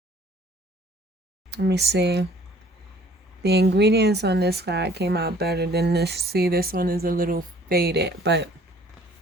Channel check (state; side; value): normal; both; correlation 0.55